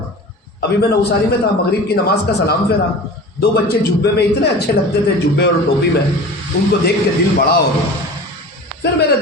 ابھی میں نوساری میں تھا، مغرب کی نماز کا سلام پھیرا، 2 بچے جبے میں اتنے اچھے لگتے تھے، جبے اور ٹوپی میں، ان کو دیکھ کے دل بڑا ہو گیا۔ پھر میرے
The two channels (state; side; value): normal; both; correlation 0.37